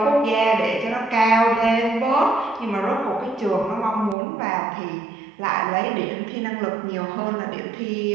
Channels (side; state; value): left; drops out; at 4.2 s